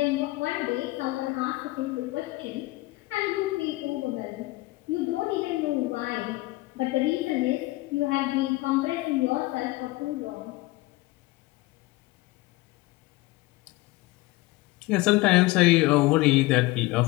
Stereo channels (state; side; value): quieter; right; 20.3 dB